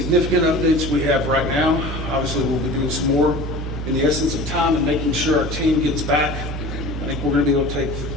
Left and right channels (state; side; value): normal; both; correlation 0.39